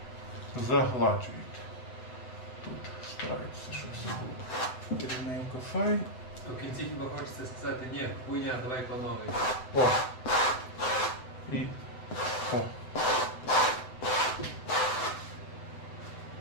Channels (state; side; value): late; right; 7.9 ms